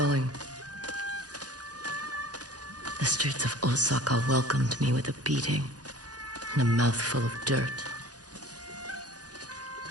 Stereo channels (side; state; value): left; late; 0.68 ms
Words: The streets of Osaka welcomed me with a beating and a mouthful of dirt.